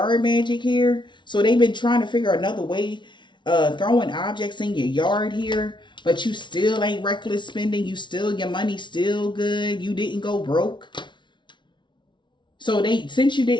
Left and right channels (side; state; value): right; late; 0.23 ms